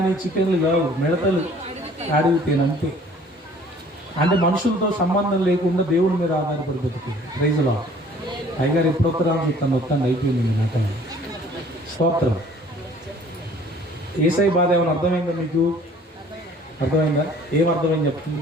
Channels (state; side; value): normal; both; correlation 0.54